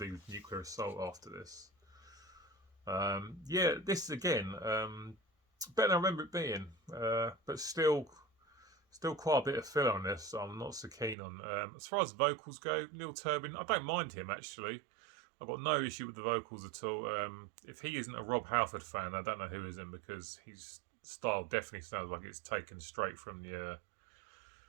Nuclear Assault after this. Yeah, this again, better than I remember it being, but still quite a bit of filler on this. So I'm not so keen on. As far as vocals go, Neil Turbin, I don't mind him actually. I've got no issue with the vocals at all. If he isn't a Rob Halford fan, I don't know who isn't, because he's style definitely sounds like it's taken straight from the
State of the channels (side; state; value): left; drops out; at 11.2 s